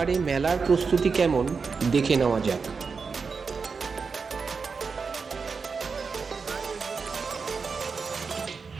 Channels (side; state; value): left; quieter; 5.1 dB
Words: মেলার প্রস্তুতি কেমন দেখে নেওয়া যাক।